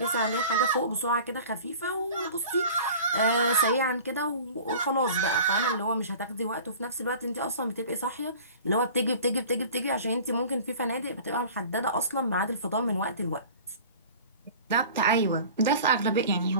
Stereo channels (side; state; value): both; inverted; correlation -0.42